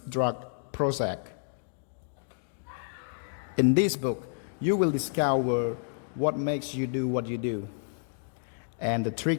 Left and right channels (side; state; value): right; silent; digital silence